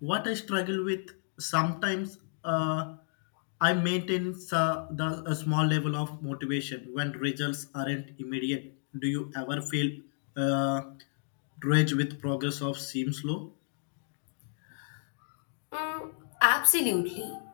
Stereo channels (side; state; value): right; silent; 57 dB below the other